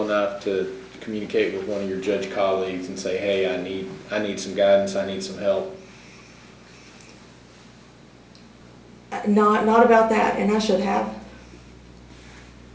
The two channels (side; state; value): both; identical; correlation 1.00